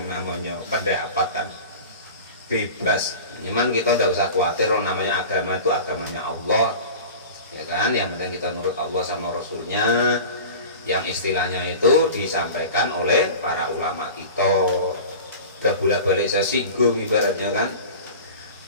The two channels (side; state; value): both; inverted; correlation -0.36